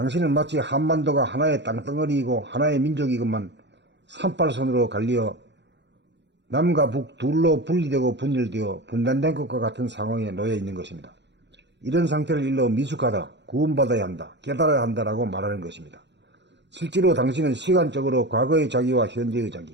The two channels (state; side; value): late; left; 0.51 ms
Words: 마치 한반도가 하나의 땅덩어리이고 하나의 민족이건만 38선으로 갈리어 남과 북 둘로 분리되고 분열되어 분단된 것과 같은 상황에 놓여 있는 것입니다. 이런 상태를 일러 미숙하다, 구원받아야 한다, 깨달아야 한다라고 말하는 것입니다. 실제로 당신은 시간적으로 과거의 자기와 현재의